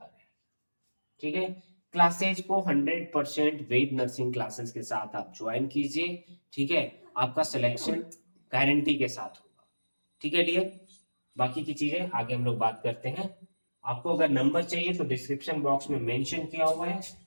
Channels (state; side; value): inverted; both; correlation -1.00